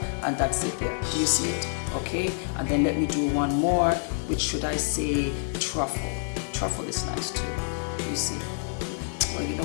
and that's it there. Do you see it? Okay. And then let me do one more, which should I say truffle. Truffle is nice too. Do you see? Well, you know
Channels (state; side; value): silent; right; 60 dB below the other